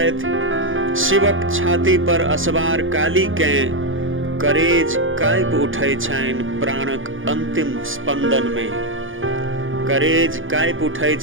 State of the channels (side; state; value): left; late; 0.58 ms